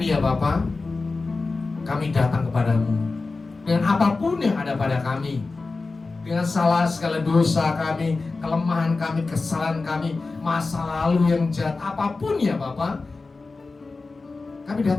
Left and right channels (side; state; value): right; quieter; 3.8 dB